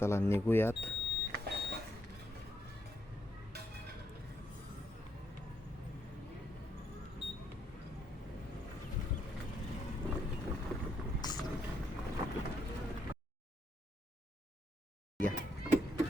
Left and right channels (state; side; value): normal; both; correlation 0.76